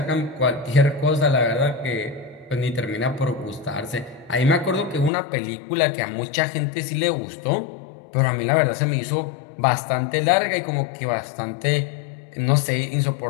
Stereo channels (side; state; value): right; drops out; at 5.1 s